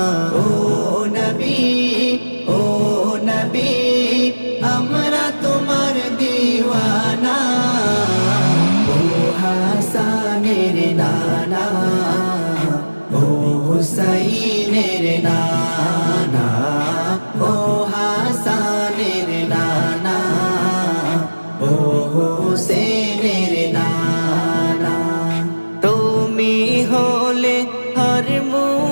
ও নবী আমরা তোমার দিওয়ানা ও হাসানের নানা ও হুসাইনের নানা ও হাসানের নানা ও হুসেনের নানা তুমি হলে হর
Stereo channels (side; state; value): both; inverted; correlation -1.00